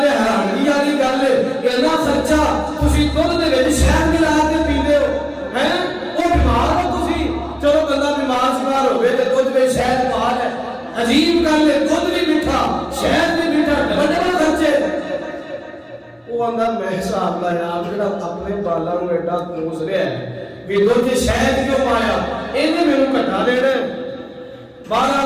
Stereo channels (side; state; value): both; identical; correlation 1.00